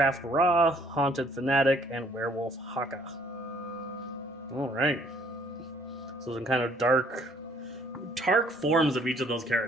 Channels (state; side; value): normal; both; correlation 0.62